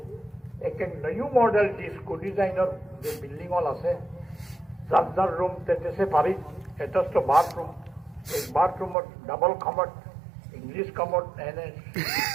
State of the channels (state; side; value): drops out; left; at 9.0 s